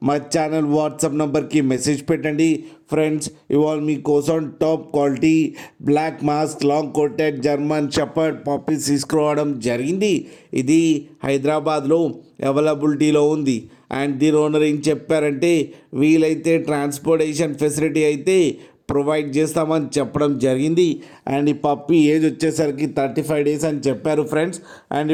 మా ఛానల్ వాట్సాప్ నెంబర్కి మెసేజ్ పెట్టండి. ఫ్రెండ్స్, ఇవాళ మీకోసం top quality black mask long coated German shepherd puppies తీసుకురావడం జరిగింది. ఇది హైదరాబాద్లో అవైలబిలిటీలో ఉంది. అండ్ దీని ఓనర్ ఏం చెప్పారంటే, వీలైతే ట్రాన్స్పోర్టేషన్ ఫెసిలిటీ అయితే ప్రొవైడ్ చేస్తామని చెప్పడం జరిగింది. అండ్ ఈ పప్పీ ఏజ్ వచ్చేసరికి 35 డేస్ అని చెప్పారు ఫ్రెండ్స్. అండ్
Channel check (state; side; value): identical; both; correlation 1.00